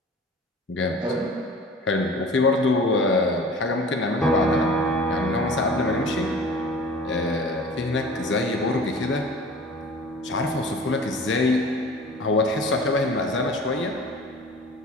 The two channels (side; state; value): both; normal; correlation 0.42